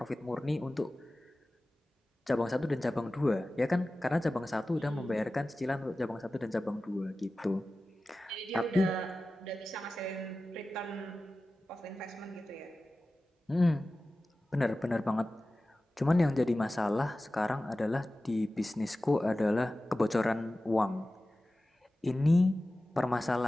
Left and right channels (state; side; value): normal; both; correlation 0.96